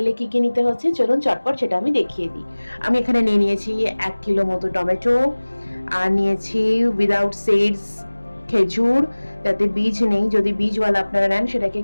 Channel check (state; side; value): inverted; both; correlation -1.00